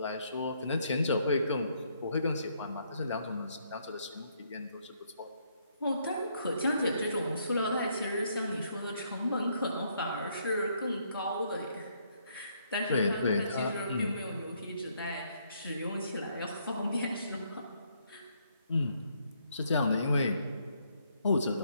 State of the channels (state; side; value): inverted; both; correlation -0.71